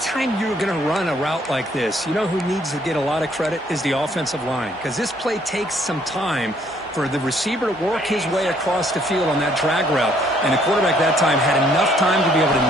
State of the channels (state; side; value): normal; both; correlation 0.65